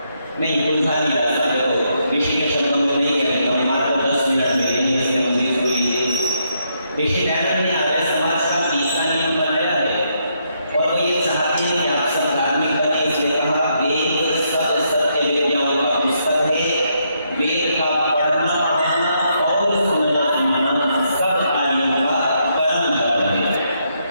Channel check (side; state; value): both; inverted; correlation -0.77